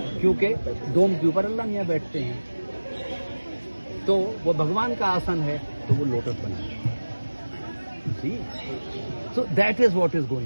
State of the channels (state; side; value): inverted; both; correlation -1.00